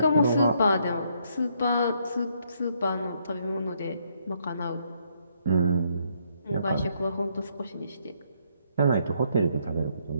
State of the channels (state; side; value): inverted; both; correlation -0.72